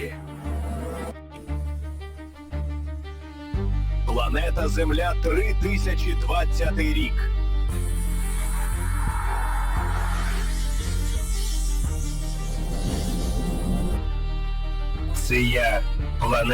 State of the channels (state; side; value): identical; both; correlation 1.00